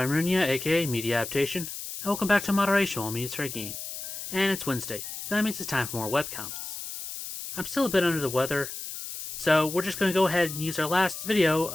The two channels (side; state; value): left; noise; hiss, 8 dB below the sound